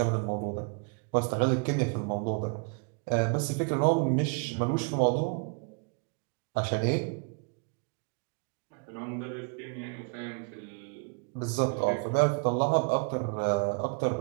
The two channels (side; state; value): left; quieter; 35.2 dB